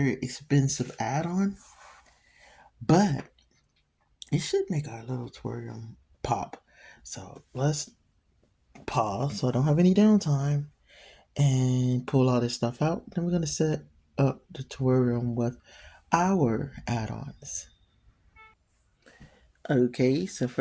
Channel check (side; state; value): both; identical; correlation 1.00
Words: expensive add-on, but it should make our little aquarium pop. So let's pause so I don't have any downtime and pull all this stuff out. Then we're gonna set up the terrarium with our add-ons. Okay, so